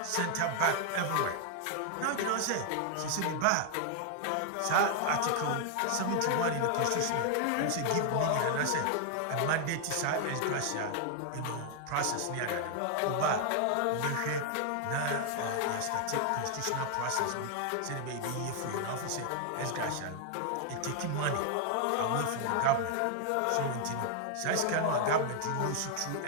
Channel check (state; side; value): different; both; correlation 0.00